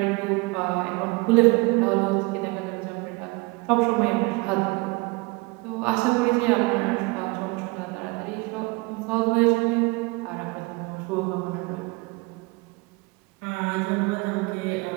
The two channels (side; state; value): left; quieter; 26.0 dB